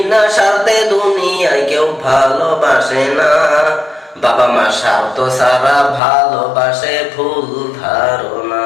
স্বার্থে দুনিয়ায় কেউ ভালোবাসে না। বাবা মা স্বার্থ ছাড়া ভালোবাসে, ভুল ধারণা।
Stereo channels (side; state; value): right; drops out; at 6.0 s